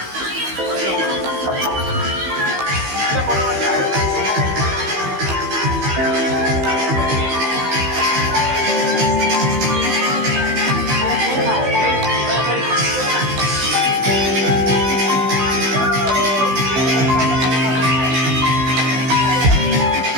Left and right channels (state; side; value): late; left; 15 ms